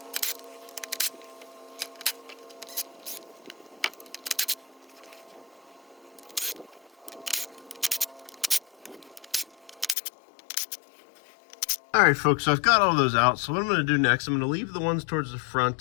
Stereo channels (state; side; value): drops out; right; at 10.0 s